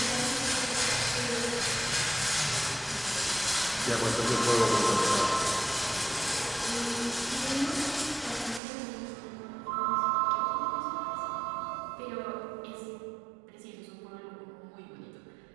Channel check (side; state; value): left; drops out; at 8.6 s